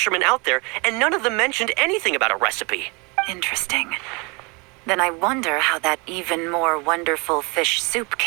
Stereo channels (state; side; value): quieter; left; 29.3 dB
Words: out there, and none of them mentioned anything about a recipe. Interesting. Then I wonder how that even more wonderful fish soup